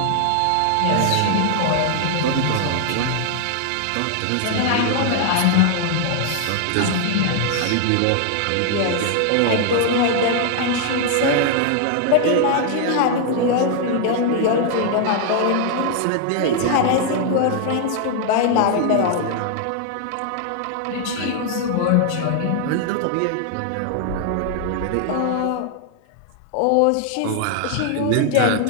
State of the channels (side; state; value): both; different; correlation 0.00